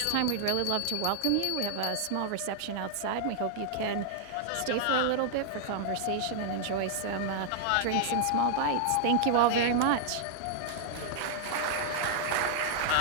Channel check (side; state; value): both; different; correlation -0.01